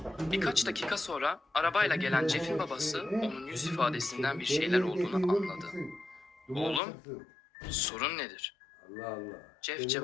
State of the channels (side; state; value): right; drops out; at 6.8 s